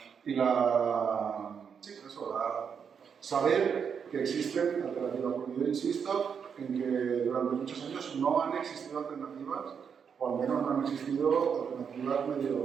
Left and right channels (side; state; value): left; quieter; 6.9 dB